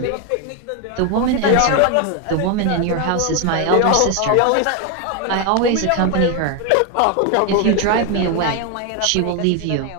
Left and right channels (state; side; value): different; both; correlation 0.01